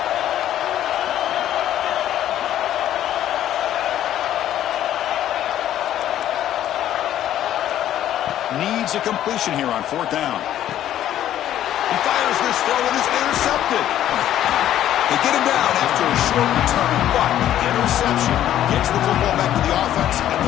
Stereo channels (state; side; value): quieter; right; 11.9 dB